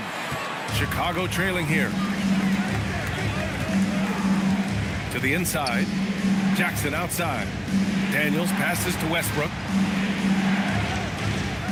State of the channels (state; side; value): identical; both; correlation 1.00